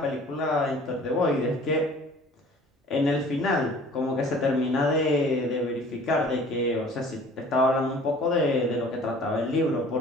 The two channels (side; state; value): both; normal; correlation 0.49